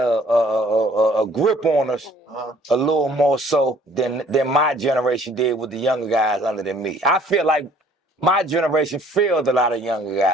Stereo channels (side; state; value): both; normal; correlation 0.57